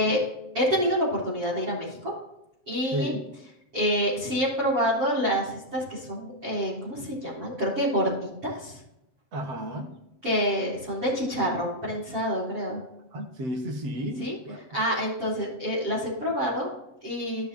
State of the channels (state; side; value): late; left; 7.6 ms